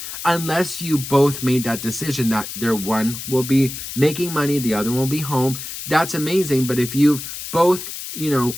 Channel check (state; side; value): noise; left; hiss, 8 dB below the sound